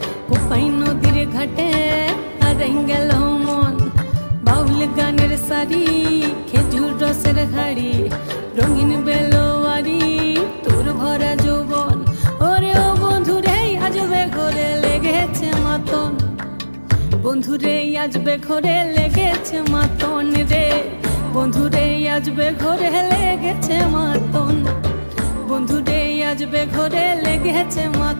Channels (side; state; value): both; inverted; correlation -1.00